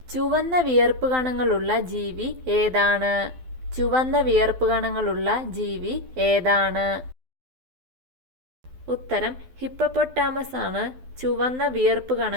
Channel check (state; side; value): late; left; 12 ms